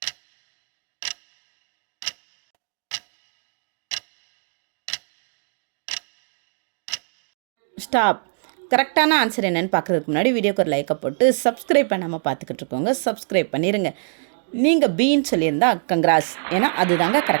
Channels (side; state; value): left; silent; digital silence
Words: ஸ்டாப். கரெக்டான ஆன்சர் என்னென்னு பார்க்குறதுக்கு முன்னாடி வீடியோக்கு ஒரு லைக்கை போட்டு சப்ஸ்கிரைப் பண்ணாமல் பார்த்துக்கிட்டு இருக்கோங்க. சப்ஸ்கிரைப் பண்ணிடுங்க. நீங்கள் பீன்னு சொல்லியிருந்தா கங்க்ராஸ், ஏன்னா அதுதாங்க